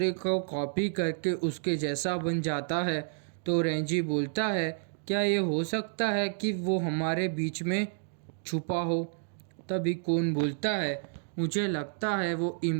को कॉपी करके उसके जैसा बन जाता है? तो रेंजी बोलता है, क्या ये हो सकता है कि वो हमारे बीच में छुपा हो? तभी कौन बोलता है, मुझे लगता है वो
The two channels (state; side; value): silent; left; digital silence